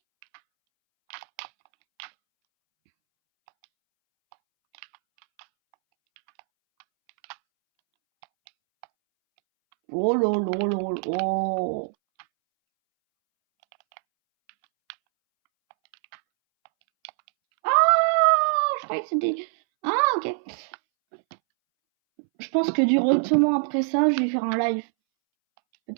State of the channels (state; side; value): silent; left; 62 dB below the other